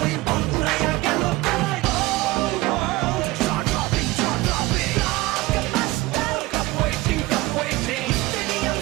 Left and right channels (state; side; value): quieter; left; 19.4 dB